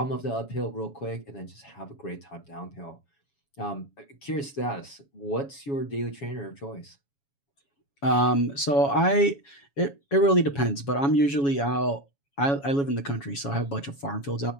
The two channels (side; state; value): right; late; 7.2 ms